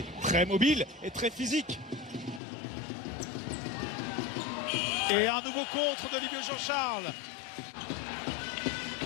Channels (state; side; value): drops out; right; at 2.4 s